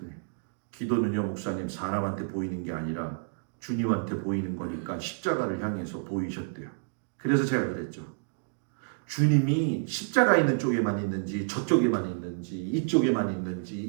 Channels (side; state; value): left; silent; digital silence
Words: 기도는요, 목사님, 사람한테 보이는 게 아니라 주님한테 보이는 거니까 십자가를 향해서 보이셨대요. 그래서 제가 그랬죠. 주님이 십자가 있는 쪽에만 있는지 저쪽에만 있는지 이쪽에만 있는지